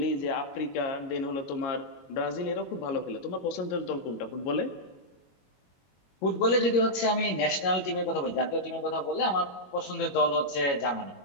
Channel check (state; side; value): late; right; 21 ms